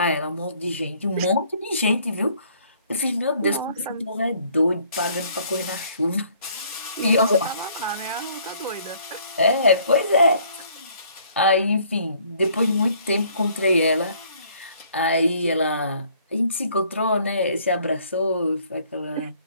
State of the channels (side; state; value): both; inverted; correlation -0.61